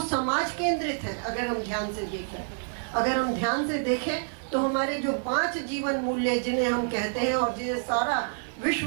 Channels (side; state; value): left; silent; 56 dB below the other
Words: समाज केंद्रित है। अगर हम ध्यान से देखें तो हमारे जो 5 जीवन मूल्य जिन्हें हम कहते हैं और जिन्हें सारा